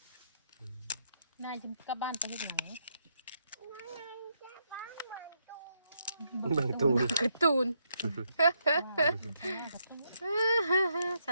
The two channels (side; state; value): both; inverted; correlation -0.78